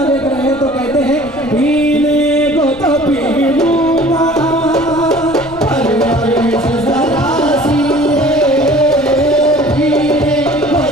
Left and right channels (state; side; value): noise; left; rumble, 21 dB below the sound